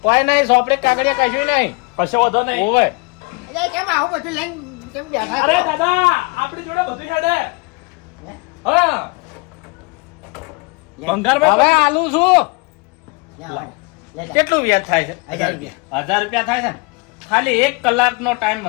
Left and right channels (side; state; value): right; quieter; 27.9 dB